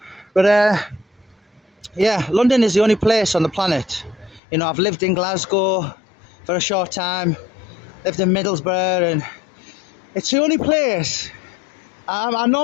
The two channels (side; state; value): right; drops out; at 4.4 s